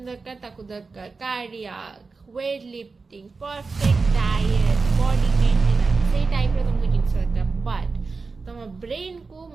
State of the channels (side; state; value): left; quieter; 4.3 dB